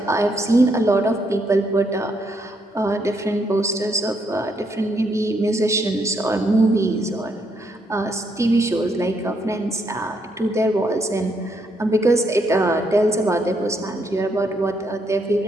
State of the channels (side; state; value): both; normal; correlation 0.75